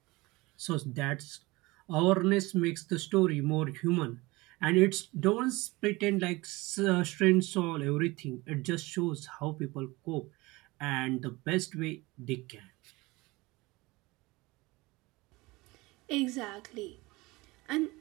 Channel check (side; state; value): left; quieter; 22.2 dB